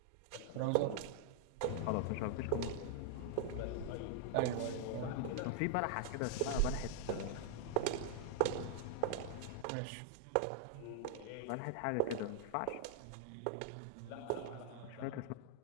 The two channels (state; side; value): different; both; correlation 0.00